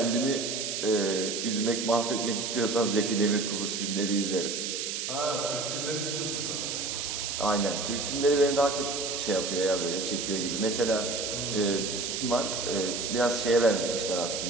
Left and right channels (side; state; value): right; noise; hiss, 3 dB below the sound